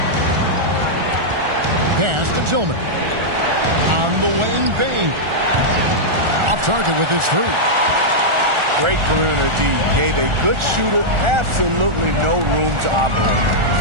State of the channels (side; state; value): left; late; 1.4 ms